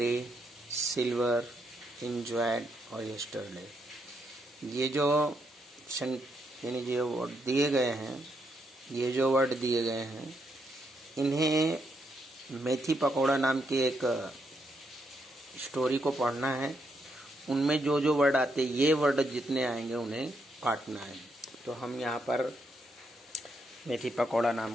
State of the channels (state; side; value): normal; both; correlation 0.78